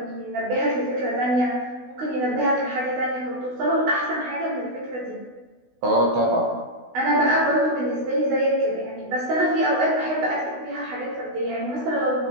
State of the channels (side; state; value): left; late; 16 ms